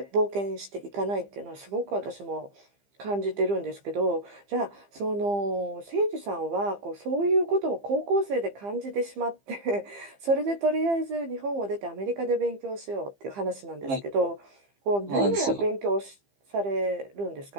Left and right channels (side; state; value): left; late; 15 ms